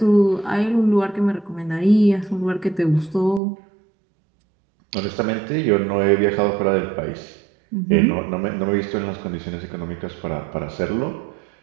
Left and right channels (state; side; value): drops out; left; at 3.4 s